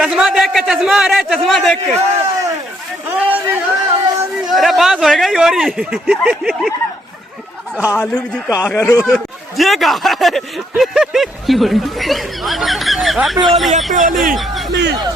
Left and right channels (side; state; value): both; normal; correlation 0.72